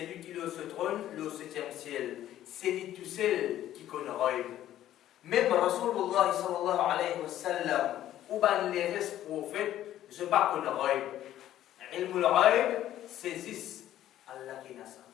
qui est au trône, le 7e ciel. C'est lui tout seul qui qu'on roule. Même Rasulullah sallallahu alayhi wa sallam, ou ben les restes prophètes, je ne pas qu'on roule. Ilmul roule, saisissent Allah qui n'a ça.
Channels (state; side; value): quieter; right; 12.6 dB